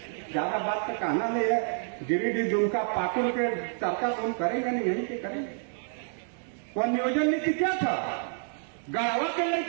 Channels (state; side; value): silent; left; digital silence